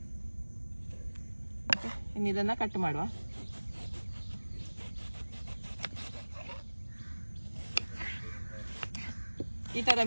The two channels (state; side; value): inverted; both; correlation -1.00